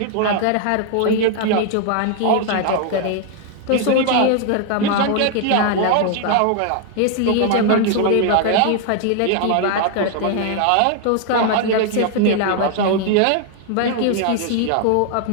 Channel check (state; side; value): different; both; correlation 0.00